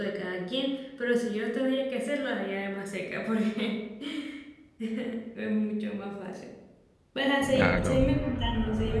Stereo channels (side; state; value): both; identical; correlation 1.00